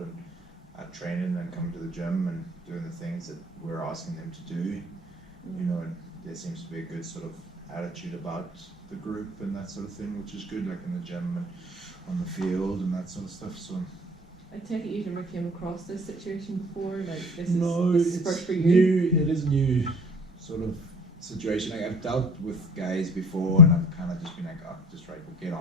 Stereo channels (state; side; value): normal; both; correlation 0.45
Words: and training and coming to the gym and doing the things that we're asking them to do. And there seems to be a good sort of attitude about the group and that sort of thing, which is good, like in the gym and on the field and that sort of stuff. So I take it you've never came across this situation before, like this is first for you? New. It is new sort of situation. Like, I've dealt with guys before, and I've kind of just been like, oh, just right, we'll get